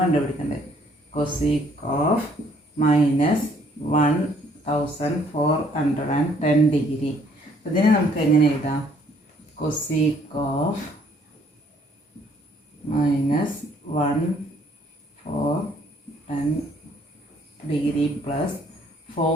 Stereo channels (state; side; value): normal; both; correlation 0.63